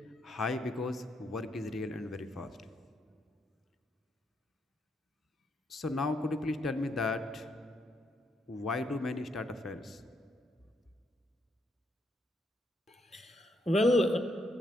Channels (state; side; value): normal; both; correlation 0.76